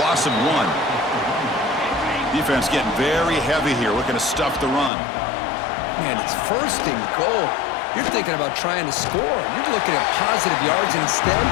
of 1. Defense getting very heavy here, looking to stuff the run. Man, it's 1st and goal. You're thinking about trying to score. You're looking at positive yards, and instead,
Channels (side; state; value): right; drops out; at 4.9 s